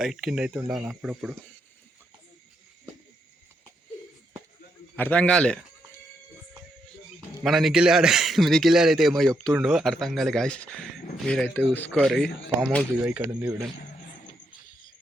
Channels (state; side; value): normal; both; correlation 0.79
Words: కింద అయితే ఉండాలి అప్పుడప్పుడు. అర్థం కాలే, మన నిఖిల్ అయితే ఏమో చెప్తుండో అర్థం కాలే గాయస్. మీరైతే చూసుకోరు. ఫామ్ హౌస్ ఇక ఇక్కడ ఉంది చూడండి.